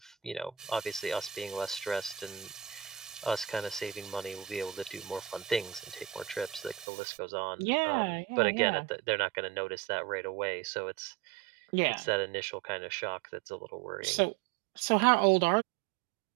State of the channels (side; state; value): left; drops out; at 6.9 s